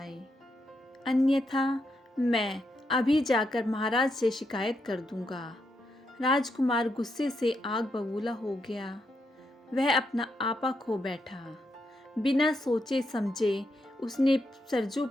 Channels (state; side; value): normal; both; correlation 0.81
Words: अन्यथा मैं अभी जाकर महाराज से शिकायत कर दूंगा। राजकुमार गुस्से से आग बबूला हो गया। वह अपना आपा खो बैठा। बिना सोचे समझे उसने सरजू